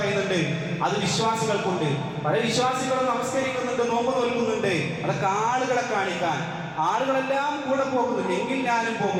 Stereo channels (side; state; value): both; identical; correlation 1.00